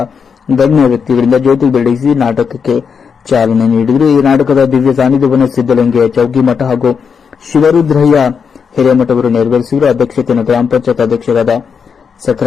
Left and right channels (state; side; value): quieter; right; 6.3 dB